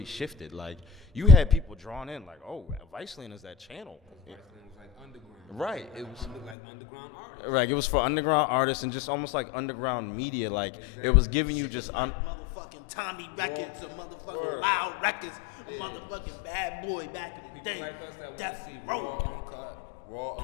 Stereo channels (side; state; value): right; drops out; at 6.6 s